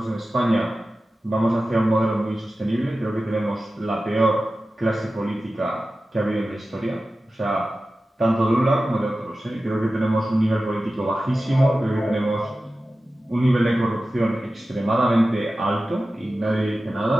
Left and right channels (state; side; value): normal; both; correlation 0.94